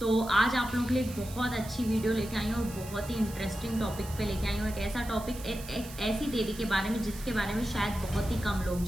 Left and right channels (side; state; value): right; noise; hiss, 15 dB below the sound